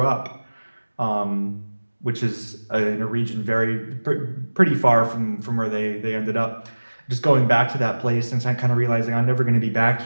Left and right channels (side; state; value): both; inverted; correlation -1.00